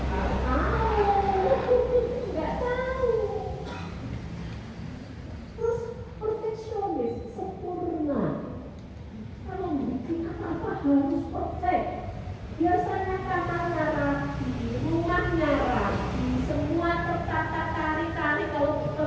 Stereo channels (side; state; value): both; identical; correlation 1.00